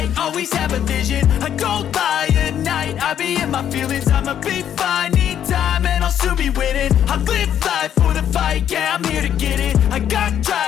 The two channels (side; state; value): right; quieter; 9.8 dB